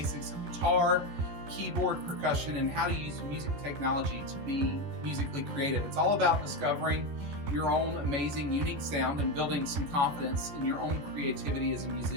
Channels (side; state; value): left; late; 13 ms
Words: of guitar, keyboard, percussion, and how to use music technology to be musically creative. It's all about discovering your own amazing, unique sound and building some confidence in your own creativity as a